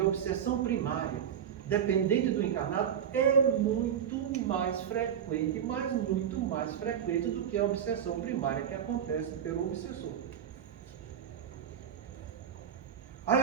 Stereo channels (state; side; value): quieter; left; 8.7 dB